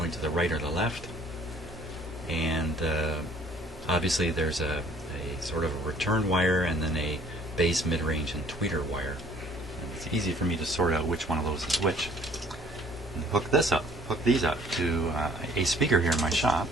to the right or the left. And obviously there's a sort of a return wire and then a base, mid-range, and tweeter wire. And it's easy for me to sort out which one of those is which. And hook these up to a speaker here in my shop.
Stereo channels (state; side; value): normal; both; correlation 0.56